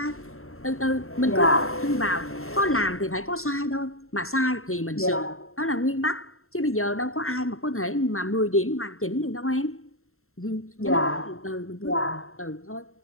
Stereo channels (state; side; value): late; right; 0.62 ms